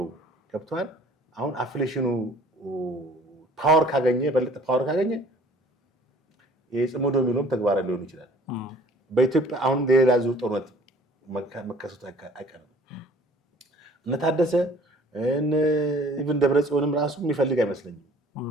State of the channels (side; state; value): both; normal; correlation 0.53